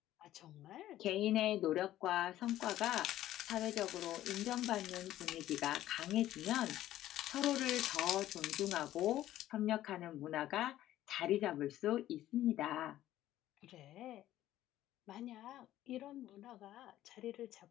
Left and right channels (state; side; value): quieter; right; 13.6 dB